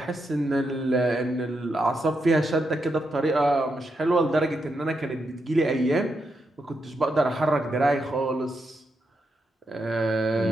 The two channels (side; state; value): both; normal; correlation 0.83